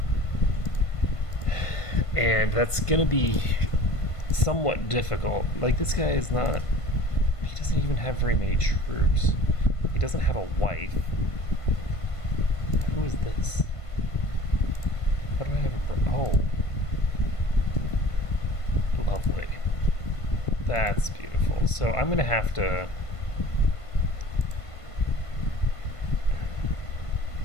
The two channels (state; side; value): late; right; 1.5 ms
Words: And that's going to be somewhat difficult. Like, this guy is not. He doesn't even have very many troops. He doesn't have a wife. Who is this? How do I have a. Oh. Lovely. That's beautiful. So I'm going to have to.